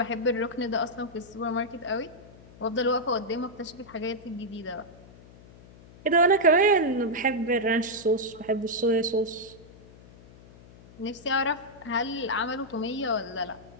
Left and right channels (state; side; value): noise; left; hum, 21 dB below the sound